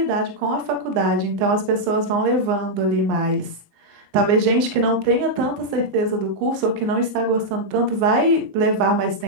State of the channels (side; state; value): left; late; 19 ms